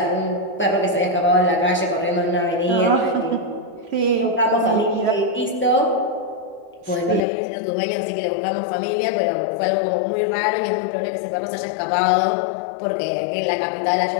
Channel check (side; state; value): right; drops out; at 7.2 s